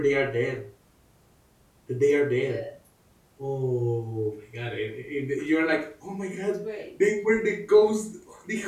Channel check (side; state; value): both; identical; correlation 1.00